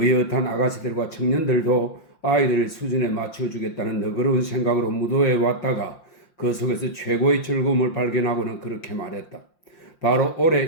아가씨들과 청년들도 아이들의 수준에 맞춰주겠다는 너그러운 생각으로 무도회에 왔다가 그 속에서 최고의 즐거움을 발견하고는 그렇게 말했다. 바로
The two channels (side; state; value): right; late; 5.7 ms